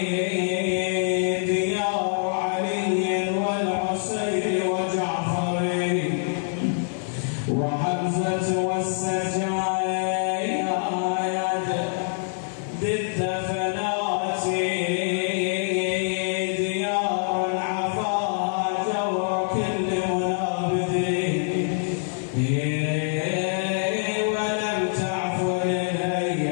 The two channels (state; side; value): silent; right; digital silence